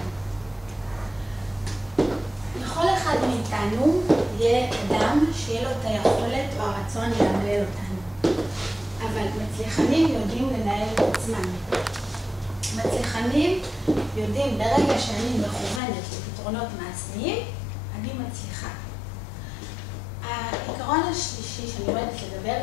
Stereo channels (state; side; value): drops out; right; at 15.8 s